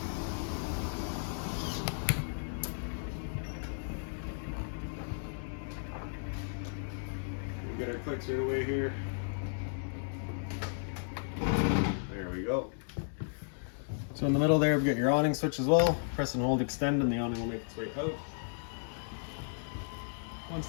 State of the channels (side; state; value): right; silent; digital silence